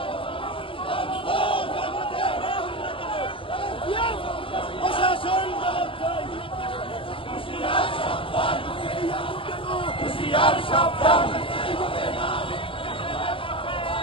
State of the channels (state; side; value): late; right; 0.26 ms